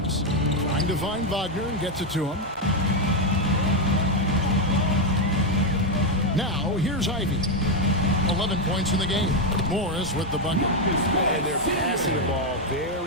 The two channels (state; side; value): normal; both; correlation 0.04